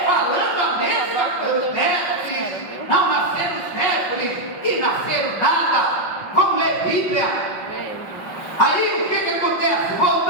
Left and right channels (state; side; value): late; right; 5.4 ms